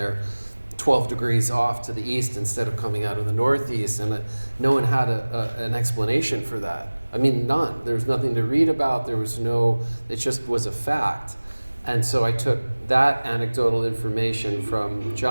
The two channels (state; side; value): inverted; both; correlation -1.00